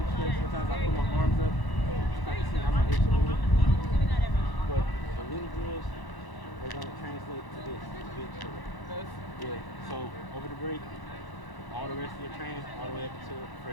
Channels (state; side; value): late; right; 1.0 ms